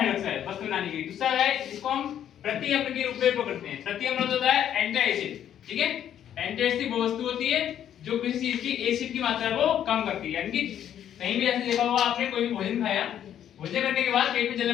वस्तु बनाने के लिए। दूसरा है इसको हम प्रति अम्ल के रूप में उपयोग करते हैं। प्रति अम्ल होता है एंटी एसिड, ठीक है। एंटी एसिड वो वस्तु होती है जो किसी चीज की एसिड की मात्रा को कम करती है। यानी कि कहीं भी ऐसे देखा होगा आपने, कोई भी भोजन खाया, भोजन करने के बाद पेट में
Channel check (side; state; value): right; quieter; 10.2 dB